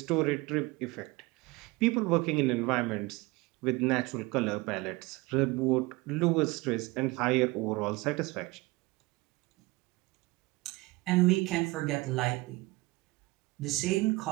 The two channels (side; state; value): left; quieter; 22.8 dB